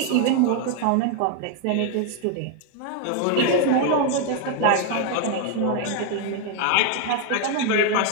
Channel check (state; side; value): different; both; correlation 0.00